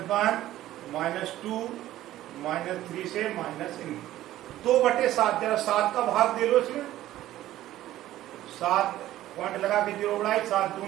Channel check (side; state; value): left; quieter; 14.2 dB